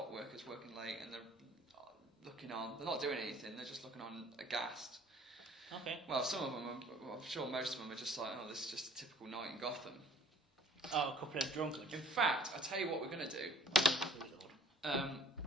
workers working late, and they're looking on. They're not doing anything. They're just looking on aghast. Okay. Well, some of them, I'm sure most of them are just like, oh, this is just a typical night in Gotham. Oh, a couple of drunkards. In fact, I tell you what we're going to do.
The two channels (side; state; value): both; normal; correlation 0.53